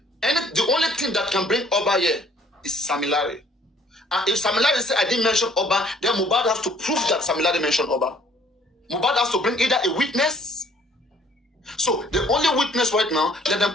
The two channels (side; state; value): both; normal; correlation 0.58